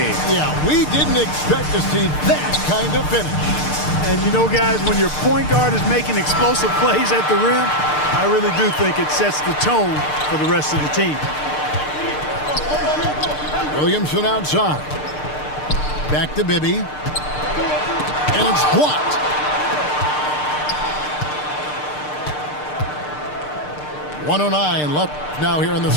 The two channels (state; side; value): late; right; 6.7 ms